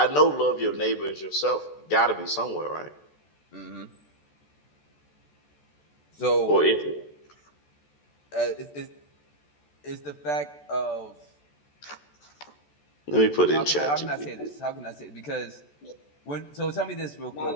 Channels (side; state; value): right; late; 14 ms